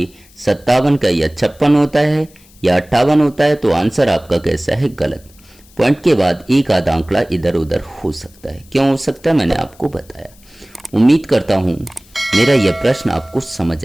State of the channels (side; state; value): left; noise; hiss, 28 dB below the sound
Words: 57 का या 56 होता है या 58 होता है, तो आंसर आपका कैसा है? गलत। पॉइंट के बाद एक आधा आंकड़ा इधर उधर हो सकता है। क्यों हो सकता है, मैंने आपको बताया। उम्मीद करता हूं मेरा यह प्रश्न आपको समझ